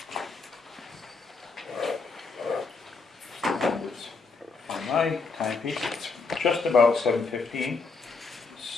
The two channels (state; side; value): quieter; right; 4.3 dB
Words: On my timepiece, it's just about 7:15.